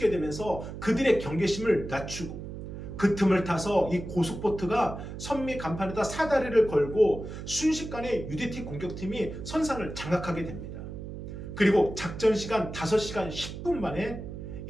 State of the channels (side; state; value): right; noise; hum, 9 dB below the sound